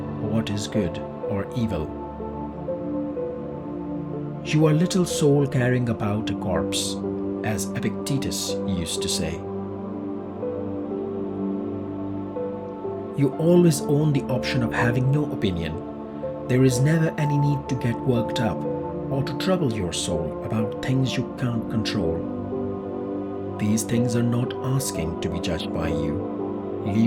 what is good or evil." You are little soul carrying about a corpse, as Epictetus used to say. You always own the option of having no opinion. There is never any need to get worked up or to trouble your soul about things you can't control. These things are not asking to be judged by you.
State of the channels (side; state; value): both; identical; correlation 1.00